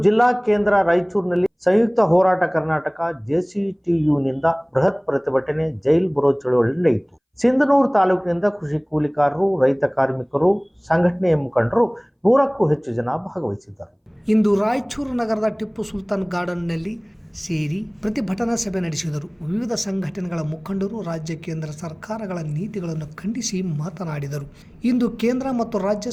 ಜಿಲ್ಲಾ ಕೇಂದ್ರ ರಾಯಚೂರಿನಲ್ಲಿ ಸಂಯುಕ್ತ ಹೋರಾಟ ಕರ್ನಾಟಕ JCTUನಿಂದ ಬೃಹತ್ ಪ್ರತಿಭಟನೆ ಜೈಲ್ ಬರೋ ಚಳವಳಿ ನಡೆಯಿತು. ಸಿಂಧನೂರು ತಾಲೂಕಿನಿಂದ ಕೃಷಿ ಕೂಲಿಕಾರರು, ರೈತ ಕಾರ್ಮಿಕರು, ಸಂಘಟನೆಯ ಮುಖಂಡರು 100ಕ್ಕೂ ಹೆಚ್ಚು ಜನ ಭಾಗವಹಿಸಿದ್ದರು. ಇಂದು ರಾಯಚೂರು ನಗರದ ಟಿಪ್ಪು ಸುಲ್ತಾನ್ ಗಾರ್ಡನ್ನಲ್ಲಿ ಸೇರಿ ಪ್ರತಿಭಟನಾ ಸಭೆ ನಡೆಸಿದರು. ವಿವಿಧ ಸಂಘಟನೆಗಳ ಮುಖಂಡರು ರಾಜ್ಯ ಕೇಂದ್ರ ಸರ್ಕಾರಗಳ ನೀತಿಗಳನ್ನು ಖಂಡಿಸಿ ಮಾತನಾಡಿದರು. ಇಂದು ಕೇಂದ್ರ ಮತ್ತು ರಾಜ್ಯ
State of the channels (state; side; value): identical; both; correlation 1.00